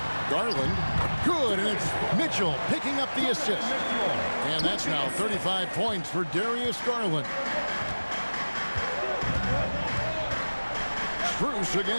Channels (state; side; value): inverted; both; correlation -1.00